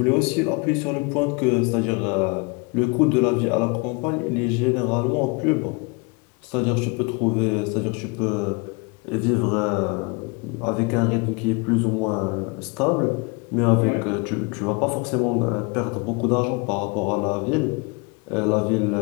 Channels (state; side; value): quieter; right; 29.8 dB